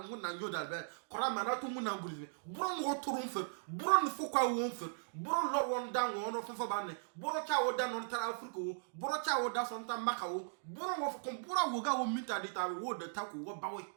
wonna nyodal be korama na to munna ngurize buron wo turun fe buron fo kwa won fe buron lor won dan won fo banne buro cha wo dan on tara afrika wo buro cha wo da son ta maka wo buron wo ko buro wo ga wo mita di ta wo de ta ko wo bawe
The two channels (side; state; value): left; silent; digital silence